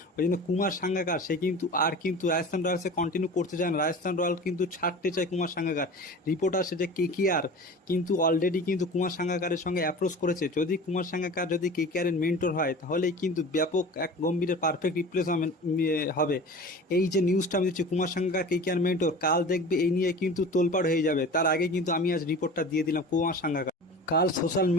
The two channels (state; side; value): normal; both; correlation 0.37